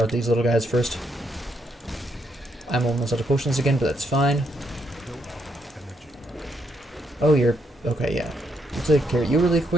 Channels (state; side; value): normal; both; correlation 0.76